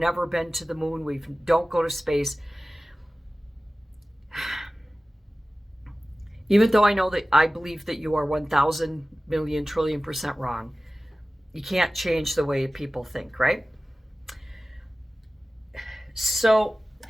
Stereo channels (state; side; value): normal; both; correlation 0.97